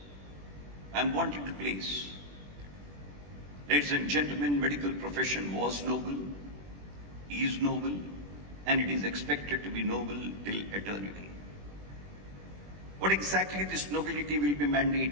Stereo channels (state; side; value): late; left; 21 ms